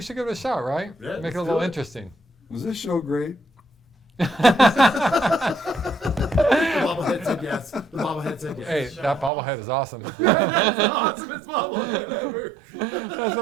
should give it a shot, right? Yeah, Make it a let's little do it. interesting. Was this show great? The bobblehead said yes. The bobblehead said yes. Hey, that bobblehead is awesome. That's the awesomest bobblehead ever. That's the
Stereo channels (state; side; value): drops out; left; at 9.3 s